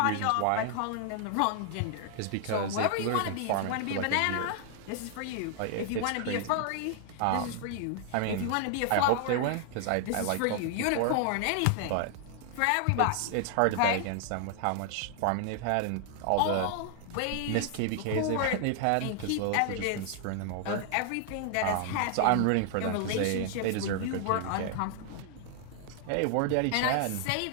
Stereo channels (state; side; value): different; both; correlation 0.00